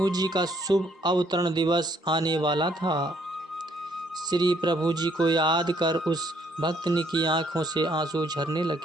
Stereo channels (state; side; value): normal; both; correlation 0.68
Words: जी का शुभ अवतरण दिवस आने वाला था। श्री प्रभु जी को याद कर उस भक्तनी की आंखों से आंसू झरने